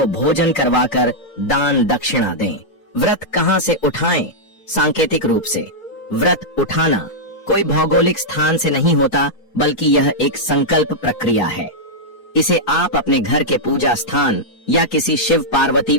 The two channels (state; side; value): late; right; 4.7 ms